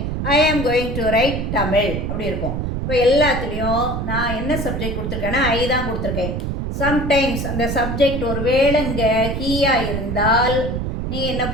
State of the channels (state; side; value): noise; right; rumble, 3 dB below the sound